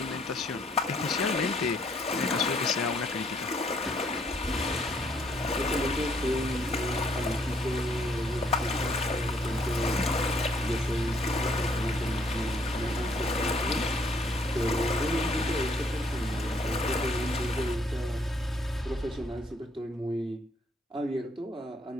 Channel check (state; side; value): normal; both; correlation 0.66